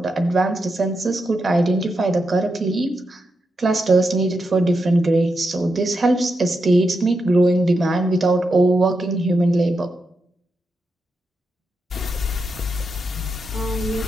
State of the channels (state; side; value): normal; both; correlation 0.86